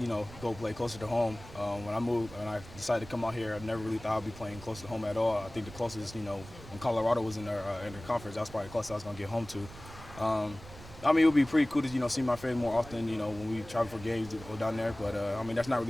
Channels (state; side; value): noise; right; rumble, 16 dB below the sound